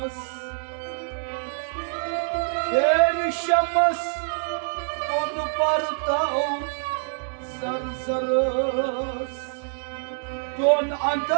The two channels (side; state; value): left; silent; digital silence